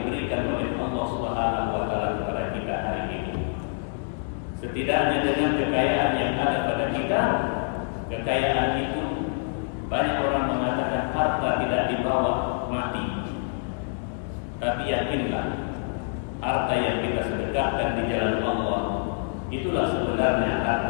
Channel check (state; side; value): silent; right; digital silence